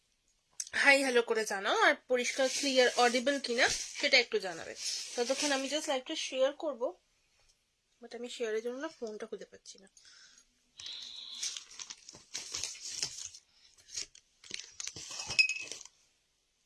হাই হ্যালো করে জানাও, আর পরিষ্কার ক্লিয়ার অডিবল কিনা সেটা একটু জানাবে। ততক্ষণ আমি জাস্ট লাইভটা শেয়ার করব, বাট আমি শেয়ারের জন্য না ফোনটা খুঁজে পাচ্ছি না।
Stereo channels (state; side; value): identical; both; correlation 1.00